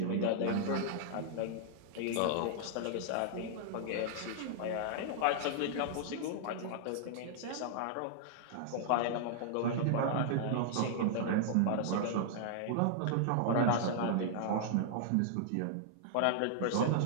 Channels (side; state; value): both; different; correlation -0.01